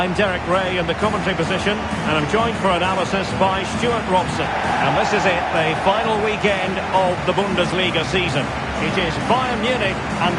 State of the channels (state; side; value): identical; both; correlation 1.00